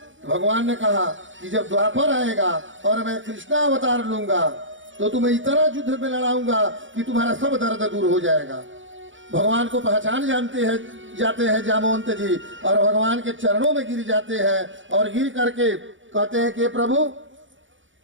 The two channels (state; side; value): late; left; 0.56 ms